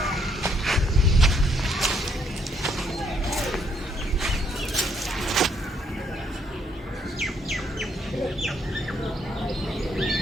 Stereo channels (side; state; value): both; normal; correlation 0.70